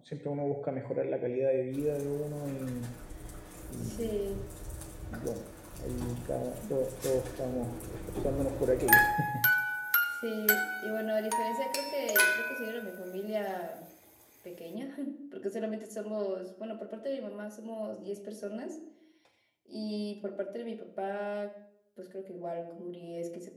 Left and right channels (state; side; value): identical; both; correlation 1.00